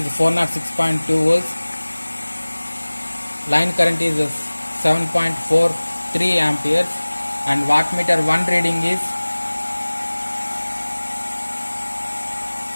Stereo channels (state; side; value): inverted; both; correlation -1.00